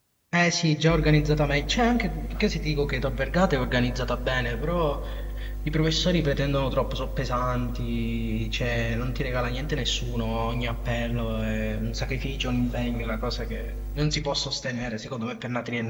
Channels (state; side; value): identical; both; correlation 1.00